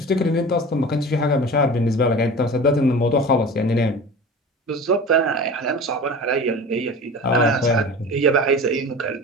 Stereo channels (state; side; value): normal; both; correlation 0.36